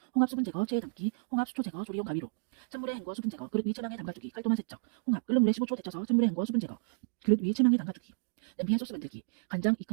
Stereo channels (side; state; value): left; silent; digital silence